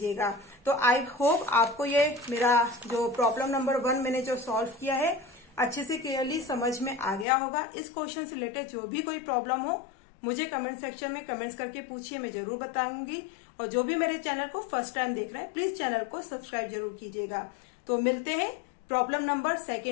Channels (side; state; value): right; drops out; at 7.2 s